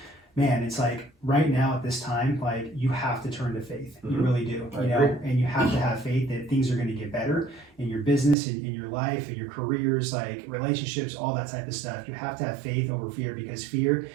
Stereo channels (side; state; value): left; drops out; at 8.3 s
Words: man, it's like right now at this time, like you have to turn to faith. You really do, and you have to have faith that things are going to get better in your business, in your life, in your careers, like relationships, all that type of stuff. You have to have faith over fear because fear,